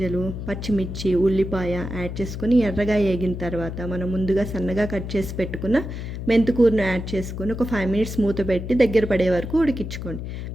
పచ్చిమిర్చి, ఉల్లిపాయ యాడ్ చేసుకొని ఎర్రగా వేగిన తర్వాత మనం ముందుగా సన్నగా కట్ చేసి పెట్టుకున్న మెంతికూరను యాడ్ చేసుకొని ఒక 5 మినిట్స్ మూత పెట్టి దగ్గర పడే వరకు ఉడికించుకోండి.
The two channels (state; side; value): noise; left; hum, 7 dB below the sound